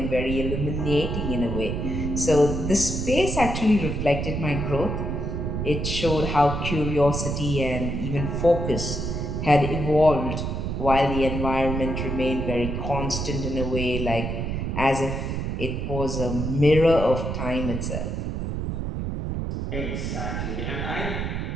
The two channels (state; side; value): noise; right; rumble, 2 dB below the sound